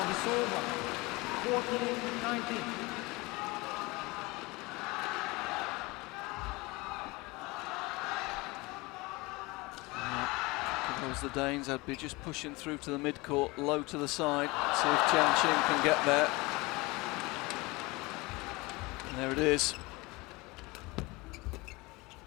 over. 14-19. If it was the Danes, I'd be just pushing through to the mid-court, low to the side, see if Jianqing can get there. And there it is.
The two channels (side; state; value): right; quieter; 23.7 dB